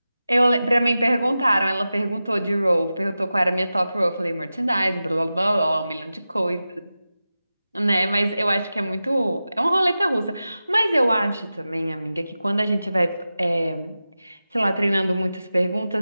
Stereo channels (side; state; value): both; inverted; correlation -0.94